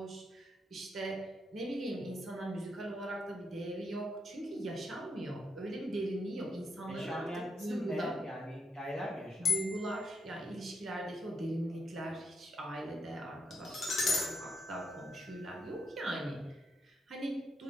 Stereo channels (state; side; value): normal; both; correlation 0.79